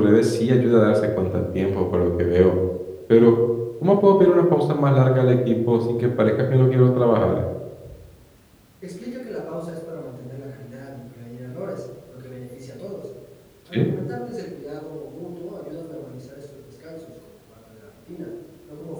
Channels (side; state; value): both; identical; correlation 1.00